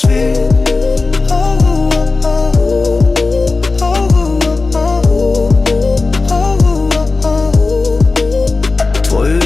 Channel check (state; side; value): quieter; right; 3.8 dB